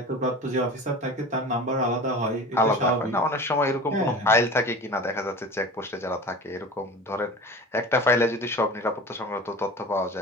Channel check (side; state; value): both; normal; correlation 0.35